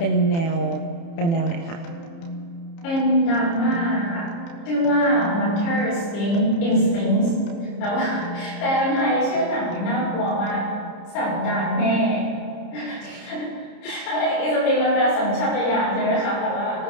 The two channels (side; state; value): right; late; 30 ms